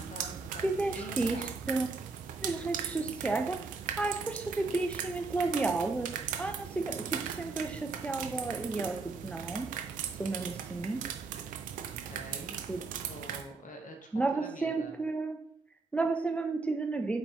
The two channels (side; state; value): left; quieter; 3.7 dB